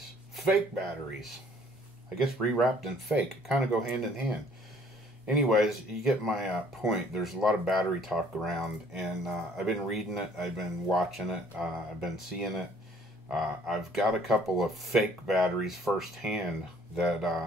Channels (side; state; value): both; normal; correlation 0.58